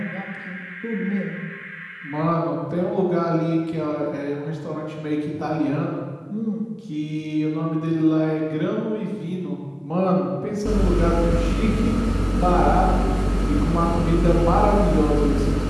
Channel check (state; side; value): identical; both; correlation 1.00